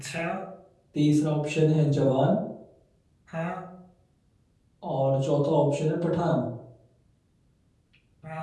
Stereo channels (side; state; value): both; identical; correlation 1.00